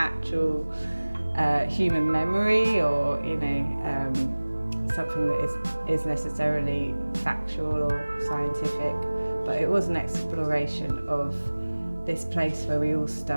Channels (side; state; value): both; inverted; correlation -1.00